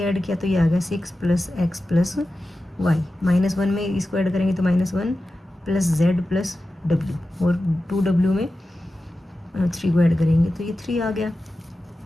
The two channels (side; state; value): both; normal; correlation 0.93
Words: ऐड किया तो ये आ गया 6 प्लस x प्लस वाई, -1 में इसको ऐड करेंगे तो -1 प्लस z प्लस w और 2w में 3 को ऐड करेंगे तो ये 3 आ गया।